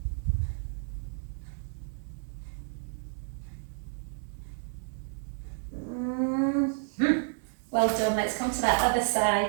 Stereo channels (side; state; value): left; silent; digital silence